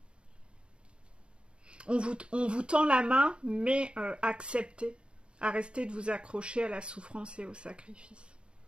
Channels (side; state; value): left; late; 0.054 ms